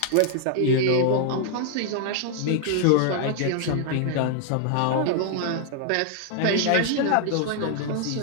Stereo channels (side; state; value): both; different; correlation 0.00